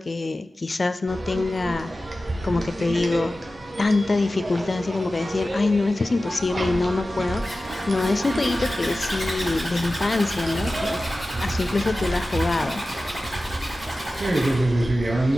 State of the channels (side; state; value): both; normal; correlation 0.95